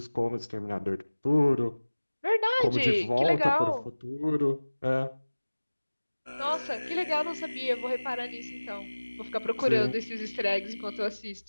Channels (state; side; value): inverted; both; correlation -1.00